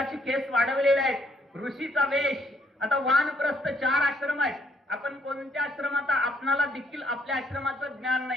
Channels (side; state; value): both; normal; correlation 0.68